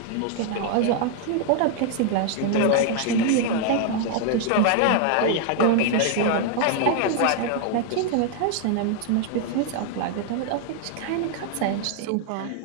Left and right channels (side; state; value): both; different; correlation 0.00